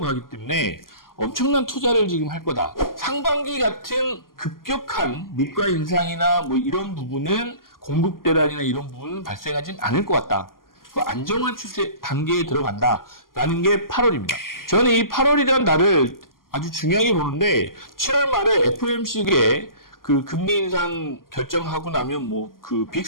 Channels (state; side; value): late; right; 0.91 ms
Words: 하기 때문에 엄청난 투자를 지금 할 거다. 상반기 같은 급격한 물가 인상이나 뭐 이런 부분은, 공급 대란이나 이런 부분은 발생하진 않을 것 같다. 그 안정화 추세 단계에 들어간다라는 게 8월입니다. 저는 이 8월이라는 날을 아주 중요하게 보는데, 7월 말에 FOMC에 그 금리 인상 결정하고 나면 뭐 그